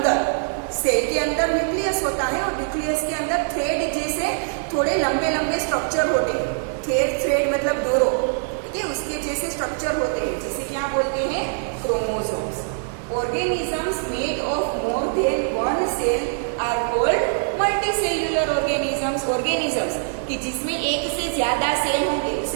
सेल के अंदर न्यूक्लियस होता है, और न्यूक्लियस के अंदर थ्रेड जैसे थोड़े लंबे लंबे स्ट्रक्चर होते हैं। थ्रेड मतलब डोरो, ठीक है, उसके जैसे स्ट्रक्चर होते हैं, जिसे क्या बोलते हैं? Chromosomes. Organisms made of more than one cell are called multicellular organisms. Organisms कि जिसमें एक से ज्यादा सेल होंगे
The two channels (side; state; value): left; silent; digital silence